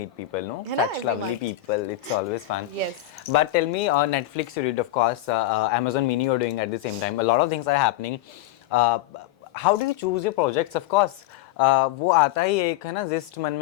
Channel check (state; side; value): quieter; right; 14.4 dB